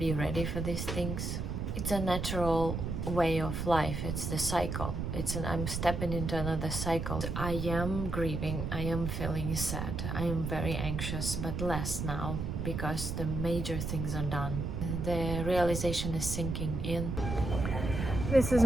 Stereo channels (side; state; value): right; noise; rumble, 3 dB below the sound